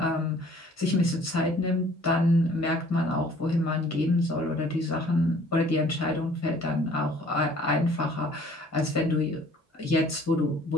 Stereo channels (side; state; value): both; normal; correlation 0.55